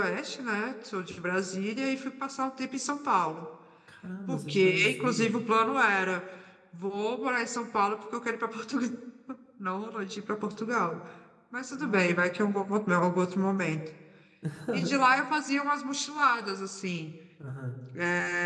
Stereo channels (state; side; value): identical; both; correlation 1.00